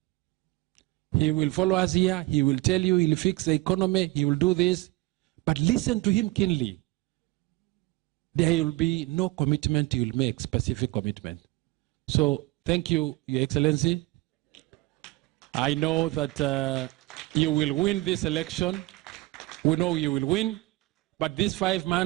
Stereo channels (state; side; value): quieter; left; 20.8 dB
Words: He will follow us here. He will tell you he'll fix the economy. He will do this. But listen to him keenly. There will be no commitment he will make, specific commitment. So thank you, Your Excellency. I know that you will win this election. We know you will win. But these 5